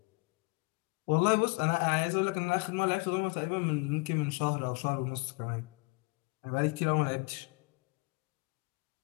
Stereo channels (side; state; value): right; quieter; 28.1 dB